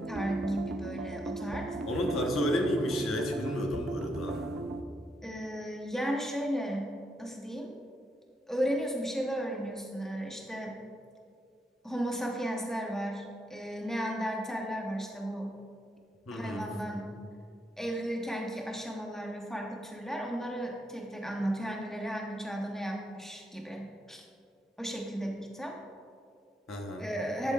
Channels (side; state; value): both; normal; correlation 0.79